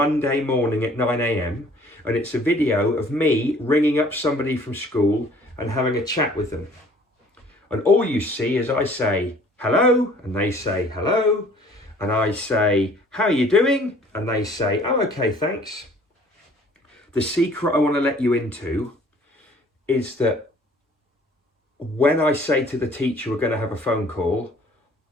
morning at 9 AM, and it's a video of me ringing up somebody from school and having a chat with them. And all you see is I say, hello, and they say, hello. And I say, how are you doing? And they say, oh, okay, thanks. The secret I want to let you into is that when I say to the teacher we're going to have a phone call,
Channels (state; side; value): normal; both; correlation 0.54